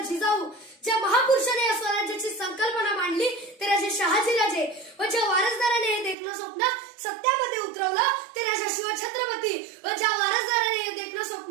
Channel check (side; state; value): left; drops out; at 6.2 s